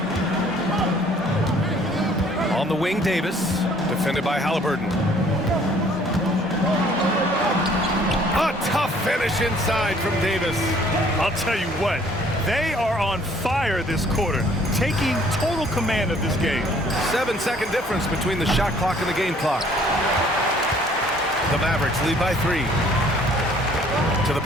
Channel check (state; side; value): normal; both; correlation 0.58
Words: On the wing, Davis, defended by Halliburton. A tough finish inside from Davis. I'll tell you what, they are on fire this quarter, taking total command of this game. 7-second difference between the shot clock and the game clock. The Mavericks lead by 3. To the